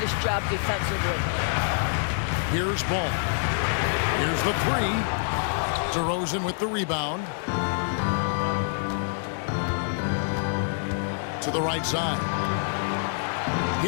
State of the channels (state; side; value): silent; right; digital silence